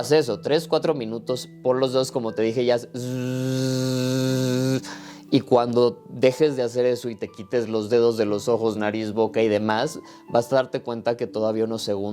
eso, 3-4 minutos, por los dedos, como te dije, ya. Y cuando dejes de hacer eso y te quites los dedos de los ojos, nariz, boca y demás, vas a darte cuenta que todavía unos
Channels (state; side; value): identical; both; correlation 1.00